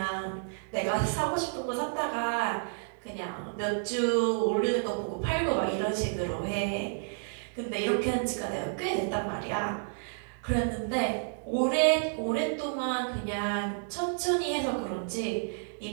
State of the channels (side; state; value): left; silent; digital silence